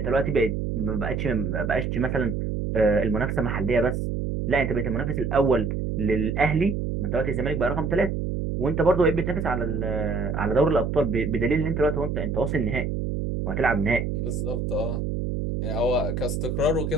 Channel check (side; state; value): right; noise; hum, 2 dB below the sound